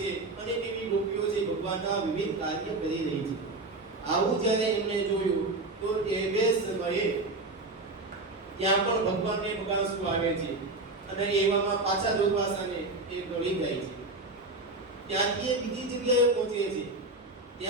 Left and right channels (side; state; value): left; quieter; 3.0 dB